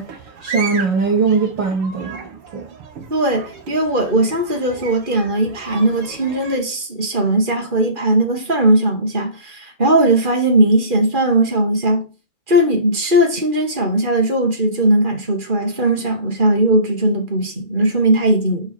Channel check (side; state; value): left; late; 2.4 ms